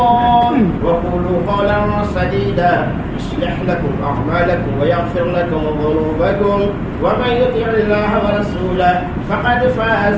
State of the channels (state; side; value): identical; both; correlation 1.00